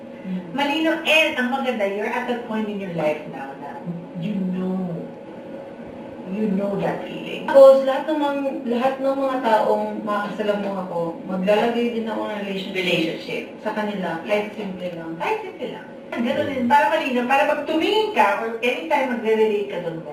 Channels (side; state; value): both; identical; correlation 1.00